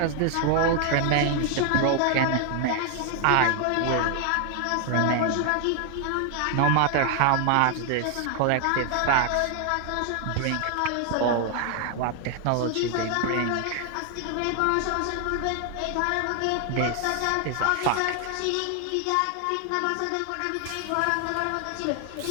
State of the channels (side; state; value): both; different; correlation 0.00